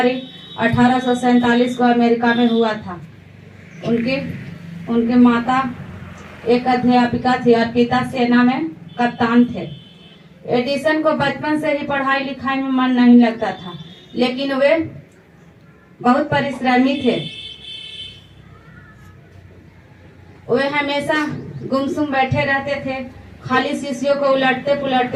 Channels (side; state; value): both; identical; correlation 1.00